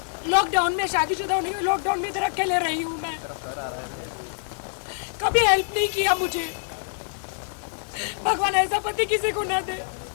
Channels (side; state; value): right; silent; digital silence